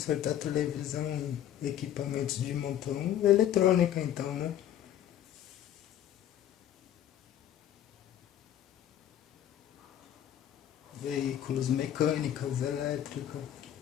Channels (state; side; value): quieter; right; 11.0 dB